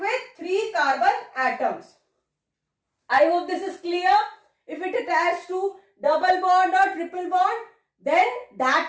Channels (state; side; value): identical; both; correlation 1.00